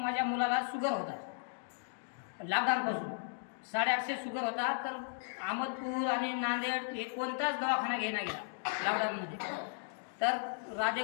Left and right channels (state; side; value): silent; right; digital silence